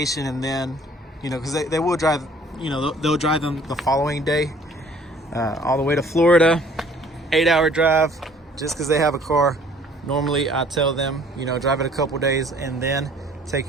and then, you know, because they will drive, you know, they'll drive them the following day all the way to Florida, 8-hour drive, just because they have a car. Normally I tell them, you know, drive it a couple days and then take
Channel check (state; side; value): normal; both; correlation 0.55